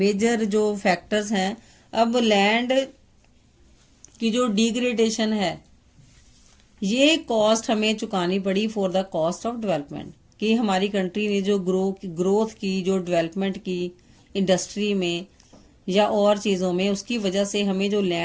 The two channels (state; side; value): identical; both; correlation 1.00